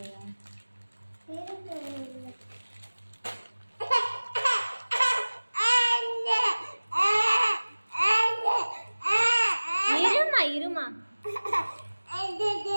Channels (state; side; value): inverted; both; correlation -1.00